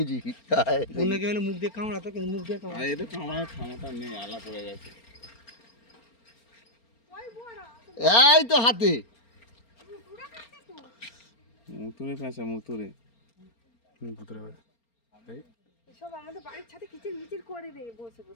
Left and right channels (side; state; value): right; late; 4.3 ms